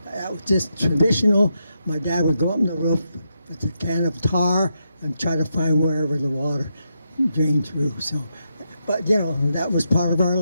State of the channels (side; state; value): both; inverted; correlation -0.82